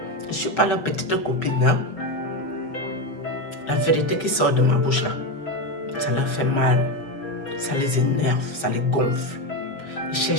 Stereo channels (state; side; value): late; right; 5.5 ms